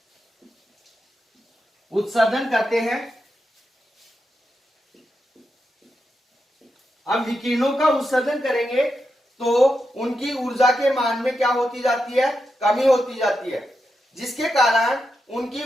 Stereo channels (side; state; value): both; normal; correlation 0.87